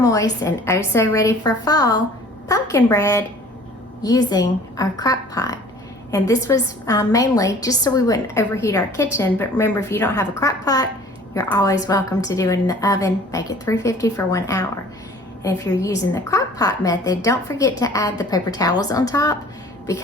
and oh so ready for fall pumpkin bread using our crock pot. And this was mainly just so we wouldn't overheat our kitchen. But remember, if you don't have a crock pot, you're always welcome to do it in the oven. Bake it 350 for 1 hour. And if you're using the crock pot method, don't forget to add the paper towels on top,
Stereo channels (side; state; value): both; normal; correlation 0.50